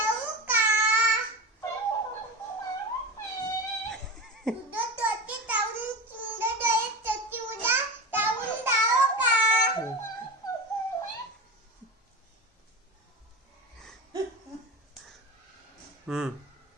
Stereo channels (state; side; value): normal; both; correlation 0.25